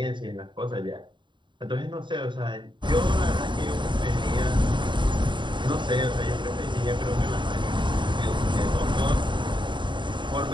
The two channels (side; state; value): left; late; 0.23 ms